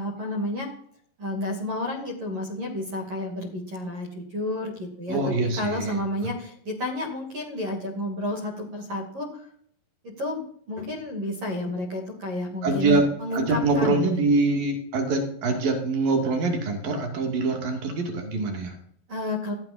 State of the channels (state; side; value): late; left; 11 ms